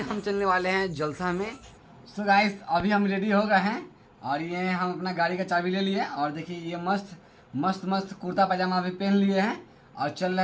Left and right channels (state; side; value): identical; both; correlation 1.00